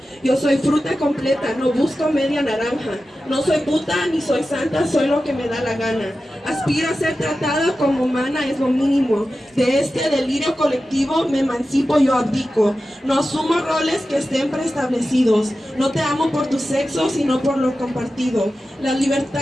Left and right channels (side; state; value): both; normal; correlation 0.93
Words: Yo soy fruta completa, no busco media naranja. No soy puta ni soy santa, soy lo que me da la gana. Aspiro a ser tratada como humana, es lo mínimo. De este delirio colectivo me emancipo, yo abdico. No asumo roles que estén preestablecidos. No te amo por tu sexo, sino por lo compartido. La